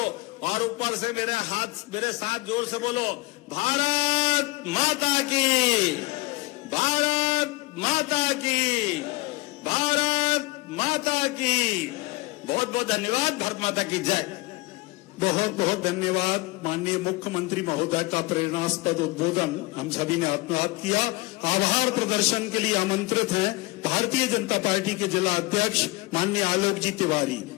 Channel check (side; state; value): right; quieter; 23.2 dB